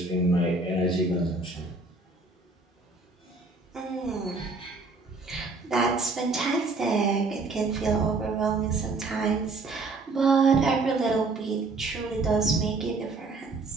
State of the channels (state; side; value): quieter; left; 3.7 dB